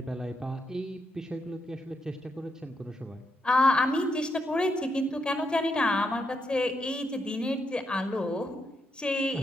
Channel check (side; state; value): both; normal; correlation 0.81